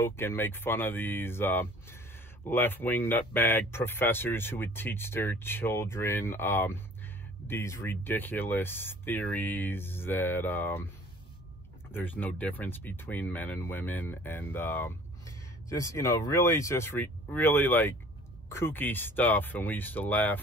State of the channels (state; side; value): normal; both; correlation 0.50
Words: and make fun of these left-wing nutbag professors who would teach their children these ridiculous theories that there's no difference between men and women, and just, you know, really just really like kooky stuff. And we used to